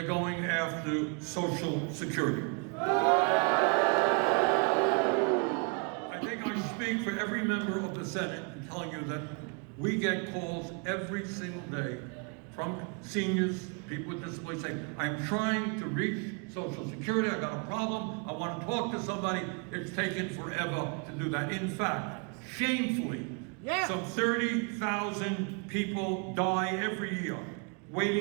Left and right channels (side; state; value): left; quieter; 36.0 dB